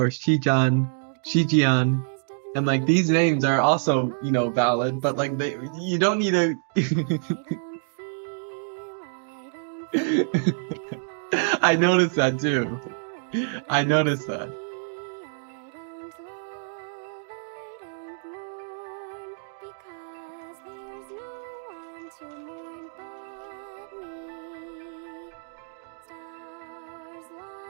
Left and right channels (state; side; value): silent; left; digital silence